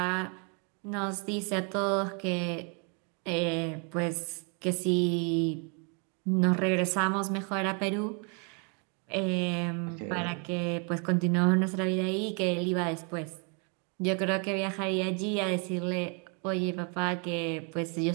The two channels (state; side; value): quieter; left; 37.7 dB